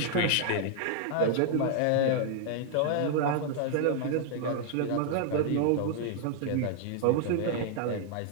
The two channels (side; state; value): both; different; correlation 0.00